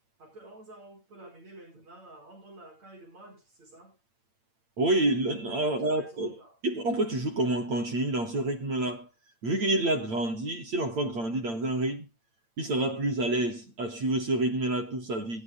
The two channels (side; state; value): left; late; 8.8 ms